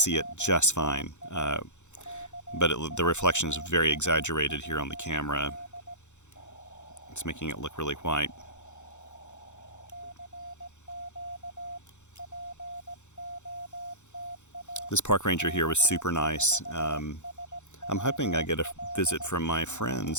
it just fine, but the reflection is very exaggerated here on the camera. It's making it look really white. This park ranger here was super nice. I'm hoping I get a visit from my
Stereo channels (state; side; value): late; right; 0.84 ms